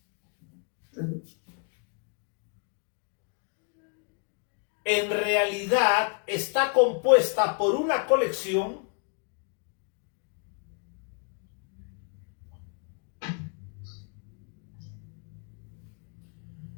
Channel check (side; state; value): right; quieter; 39.3 dB